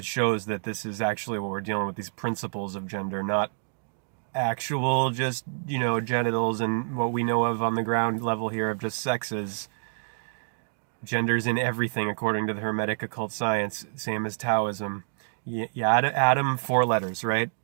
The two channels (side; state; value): left; silent; digital silence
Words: shows that this is actually what we're dealing with, these principles of gender, not actual just, genitals and what we know of on the ground level here of just sexes. Gender's in everything according to the Hermetic occult science, same as Taoism. Adam, 4 letters, right?